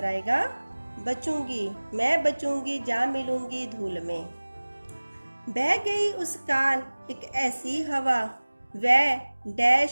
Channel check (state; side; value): inverted; both; correlation -1.00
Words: आएगा बचूंगी। मैं बचूंगी जा मिलूंगी धूल में। बह गई उस काल एक ऐसी हवा, वह